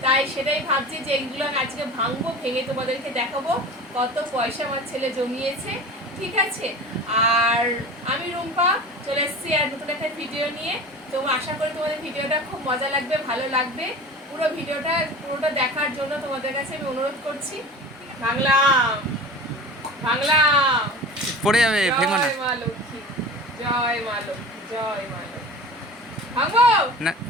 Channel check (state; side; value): normal; both; correlation 0.35